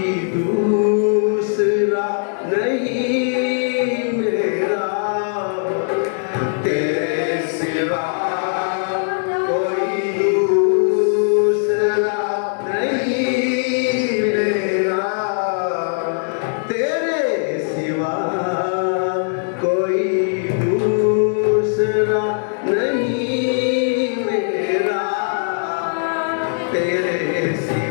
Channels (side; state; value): right; silent; 66 dB below the other